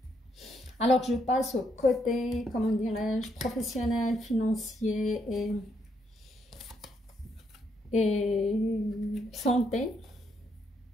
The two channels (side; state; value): both; normal; correlation 0.76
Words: Alors, je passe au côté, comment dirais-je, professionnel, financier et santé.